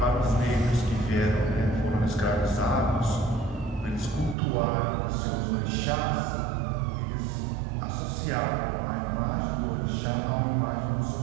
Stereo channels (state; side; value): drops out; left; at 4.4 s